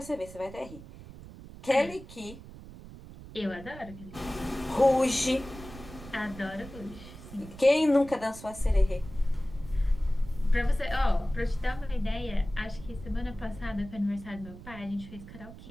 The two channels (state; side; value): noise; right; rumble, 15 dB below the sound